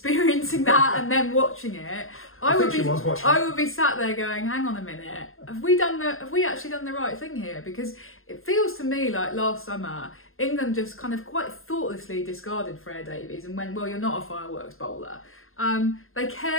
that and then watching it, I would be sat there going, hang on a minute, have we actually done the right thing here? Because it feels to me like last summer England just kind of quite thoughtlessly discarded Freya Davies and went, well, you're not a fireworks bowler. They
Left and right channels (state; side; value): late; right; 0.61 ms